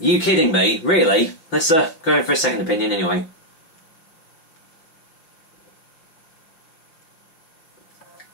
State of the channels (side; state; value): right; late; 6.0 ms